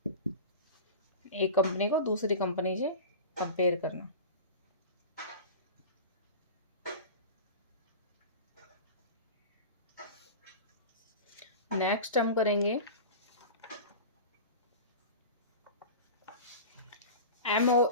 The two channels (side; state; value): both; inverted; correlation -0.32